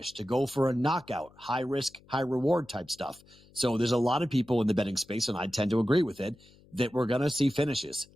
to go for a knockout, high risk, high reward type stuff. So there's a lot of people in the betting space, and I tend to agree with it, that we're going to see finishes.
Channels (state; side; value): noise; left; hum, 27 dB below the sound